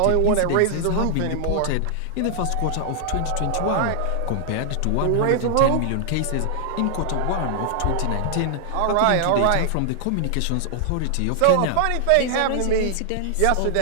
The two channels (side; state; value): both; different; correlation -0.01